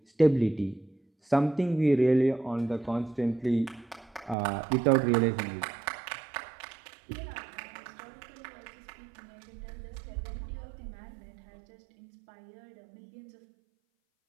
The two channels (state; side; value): drops out; left; at 4.4 s